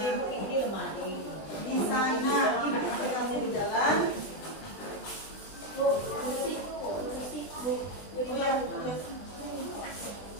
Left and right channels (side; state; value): right; late; 20 ms